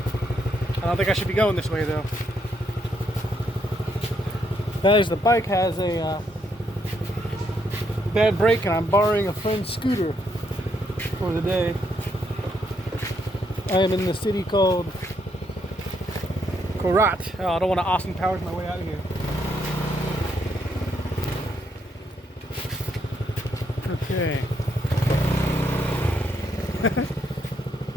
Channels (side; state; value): both; normal; correlation 0.75